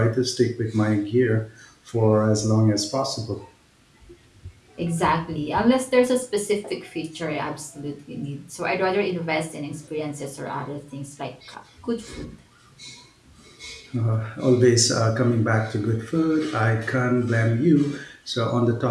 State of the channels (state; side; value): identical; both; correlation 1.00